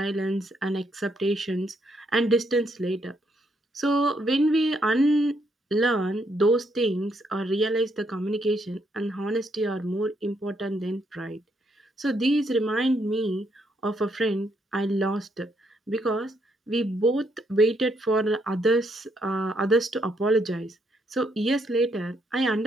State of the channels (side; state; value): both; normal; correlation 0.74